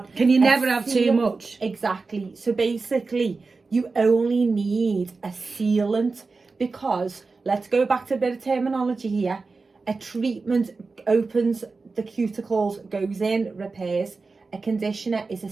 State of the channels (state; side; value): quieter; left; 4.1 dB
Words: Can you a never have too seal- much? Exactly. So basically, you only need a sealant because, let's go back to a bit of terminology here. A treatment opens the cuticles, goes in, repairs. A conditioner is a